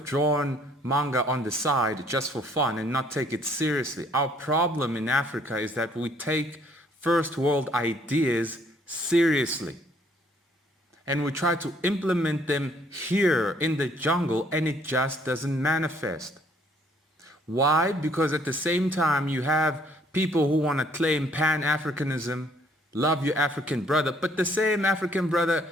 drawn manga on the side just for fun and not take it seriously. Our problem in Africa is that we take first world ideas seriously. And we try to implement them here in the jungle, and it just doesn't manifest. Why? Because at the same time you have people who want to claim Pan-Africanism, love your African brother, but the same African brother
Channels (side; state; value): both; normal; correlation 0.63